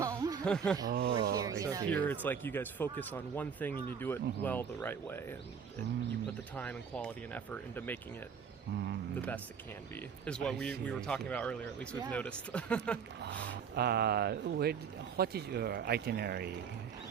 We're here, Here it's like you guys focus on one thing and you do it well the right way, and you put the time and quality and effort into making it the best it can be, is what we were talking about earlier, at least we've noticed. What is your itinerary?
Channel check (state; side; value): quieter; left; 6.9 dB